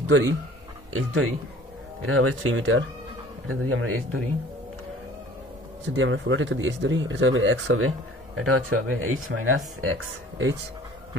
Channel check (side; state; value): both; normal; correlation 0.49